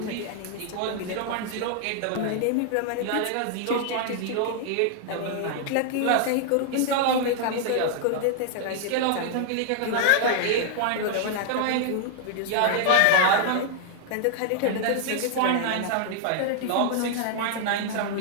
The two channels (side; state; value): both; different; correlation 0.00